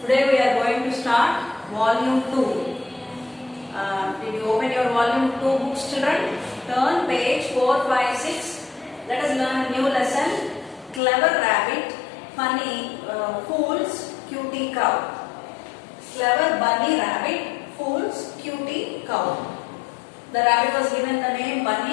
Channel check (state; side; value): drops out; right; at 11.0 s